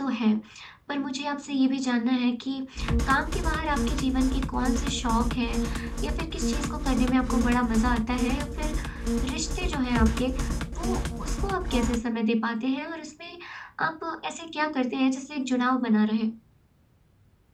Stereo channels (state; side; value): identical; both; correlation 1.00